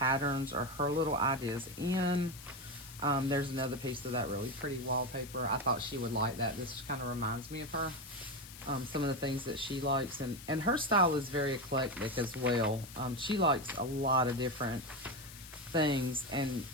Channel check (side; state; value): left; noise; hiss, 15 dB below the sound